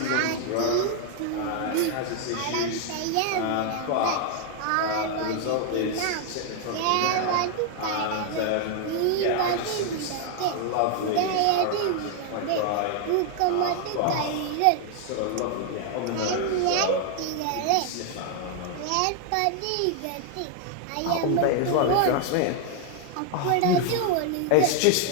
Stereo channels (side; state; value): both; different; correlation 0.00